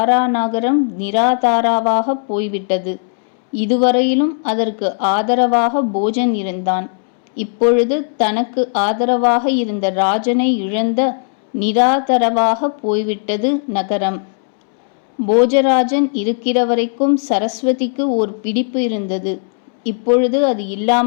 நகரம் நிராதாராவாக போய்விட்டது. இதுவரையிலும் அதற்கு ஆதரவாக போஜன் இருந்தான். இப்பொழுது தனக்கு ஆதரவாக இருந்த ராஜனை இழந்த நிராதரவாக போய்விட்டது நகரம். போஜராஜன் இருக்கிற வரைக்கும் சரஸ்வதிக்கு ஓர் பிடிப்பு இருந்தது. இப்பொழுது அது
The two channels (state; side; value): silent; right; 69 dB below the other